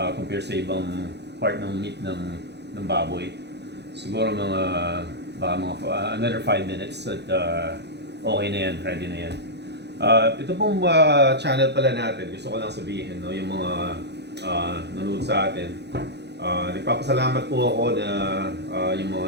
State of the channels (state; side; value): late; left; 0.49 ms